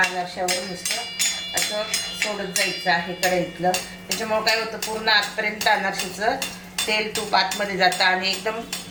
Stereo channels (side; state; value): both; identical; correlation 1.00